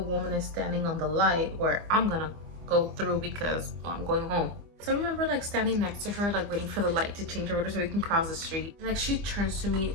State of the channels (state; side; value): late; left; 25 ms